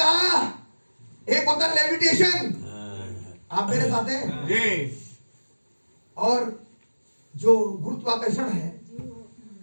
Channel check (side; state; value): both; inverted; correlation -1.00